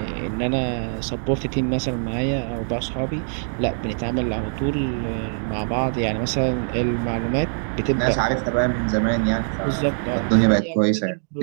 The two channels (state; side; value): silent; left; digital silence